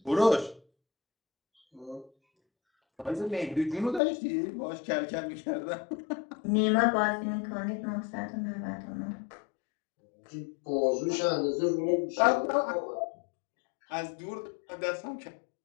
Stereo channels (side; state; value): right; drops out; at 4.0 s